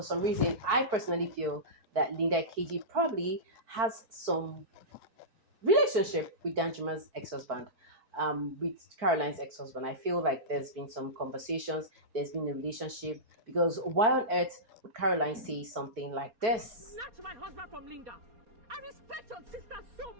some reason, I personally feel that Linda KG probably has some relationship with Danjuma's ex-husband, with Caroline's ex-husband. I feel like there's been some conversations, there's been a relationship, because why on earth would Caroline say something like this? Snatch my husband from Linda. respect your sister so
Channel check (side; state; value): left; late; 4.6 ms